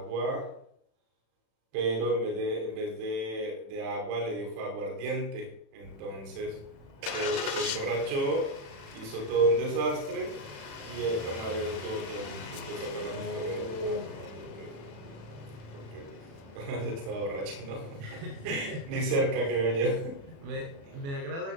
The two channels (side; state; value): left; late; 36 ms